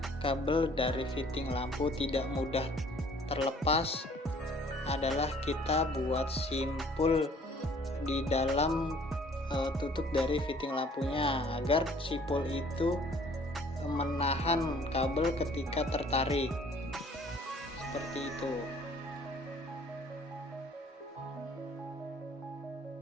kabel dari fitting lampu tidak mudah terlepas adalah kita buat simpul di dalam tutup dari fitting lampunya agar simpul itu menahan kabel ketika tertarik, seperti itu.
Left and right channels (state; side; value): normal; both; correlation 0.56